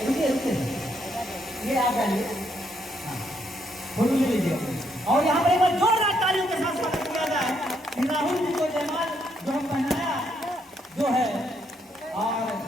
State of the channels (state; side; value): normal; both; correlation 0.74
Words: ये आप डालिए, फोटो ले लीजिए। और यहाँ पर एक बार जोरदार तालियों के साथ स्वागत किया जाए कि राहुल जी को जयमाल जो हम पहनाया जो है, और